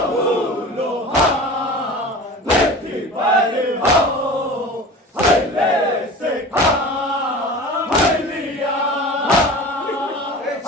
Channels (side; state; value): both; normal; correlation 0.36